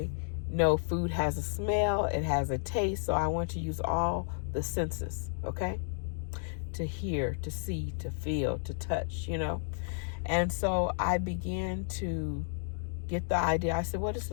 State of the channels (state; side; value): silent; right; digital silence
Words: know food has a smell, it has a taste, so I want to use all the senses, okay? To hear, to see, to feel, to touch, And so I began to get the idea. I said, what is